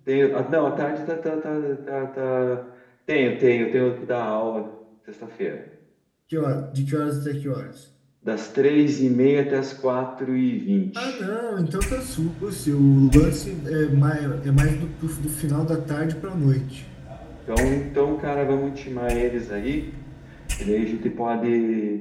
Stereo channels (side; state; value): both; identical; correlation 1.00